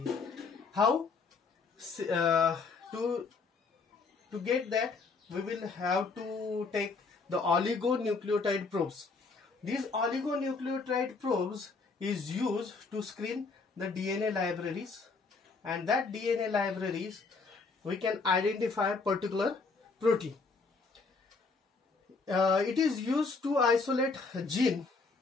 How? To get that, we will have to take the oligonucleotide probes. These oligonucleotide probes is used to screen the DNA libraries, and that DNA libraries we can identify particular protein. It is used to isolate gene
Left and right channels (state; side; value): quieter; right; 4.3 dB